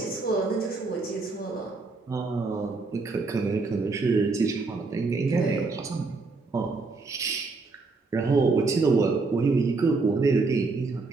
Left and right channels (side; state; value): left; quieter; 3.9 dB